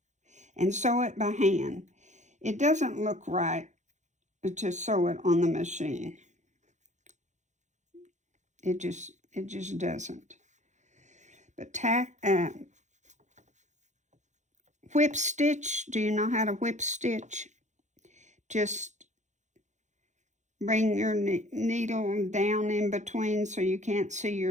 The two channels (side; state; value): left; late; 0.35 ms